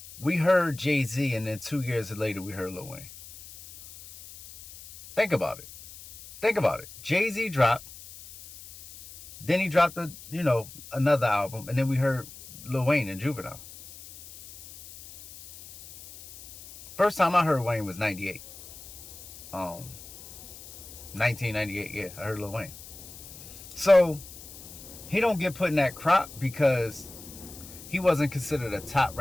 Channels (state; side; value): noise; left; hiss, 16 dB below the sound